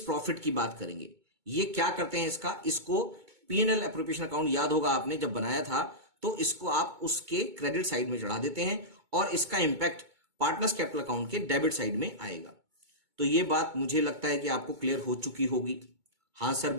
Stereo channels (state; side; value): late; left; 2.2 ms